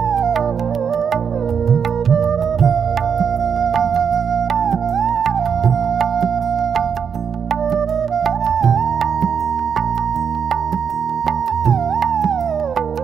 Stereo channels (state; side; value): quieter; left; 7.0 dB